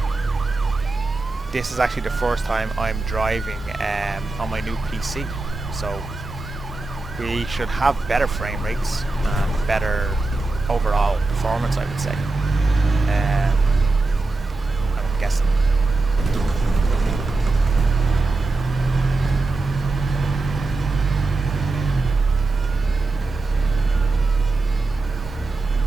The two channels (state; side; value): quieter; left; 3.3 dB